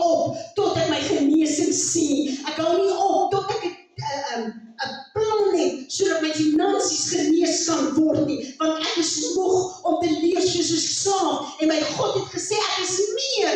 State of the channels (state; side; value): identical; both; correlation 1.00